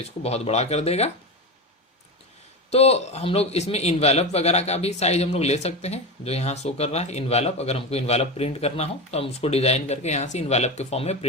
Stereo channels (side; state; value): both; normal; correlation 0.20